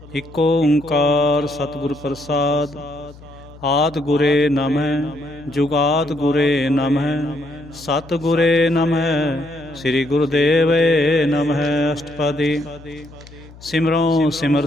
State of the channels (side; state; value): left; noise; hum, 20 dB below the sound